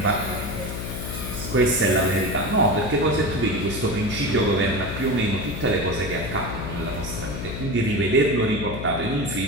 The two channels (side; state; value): left; noise; hum, 6 dB below the sound